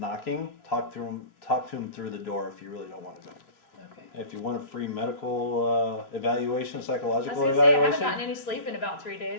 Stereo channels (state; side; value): late; right; 3.0 ms